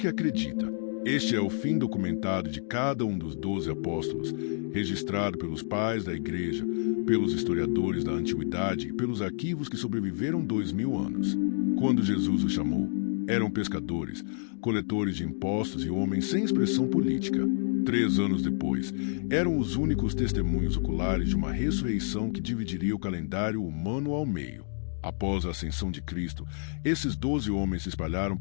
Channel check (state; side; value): silent; right; digital silence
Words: acredita. Este é o fim documentado de cada um dos 12 apóstolos, registrado pelos pais da igreja, pelos historiadores da antiguidade e pelos arquivos que sobreviveram 2000 anos. Quando Jesus os chamou, eram pescadores, coletores de impostos e homens sem expressão política. 3 anos depois, eram os únicos testemunhos oculares de uma ressurreição que dividiria o calendário humano ao meio. Após a ascensão de Cristo, esses 12 homens se espalharam